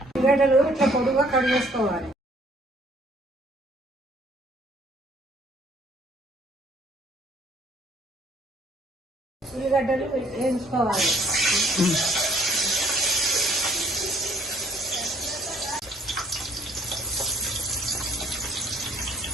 ఉల్లిగడ్డలు ఇట్లా పొడుగా కట్ చేసుకోవాలి. ఉల్లిగడ్డలు వేయించుకోవాలి.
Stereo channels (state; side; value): normal; both; correlation 0.60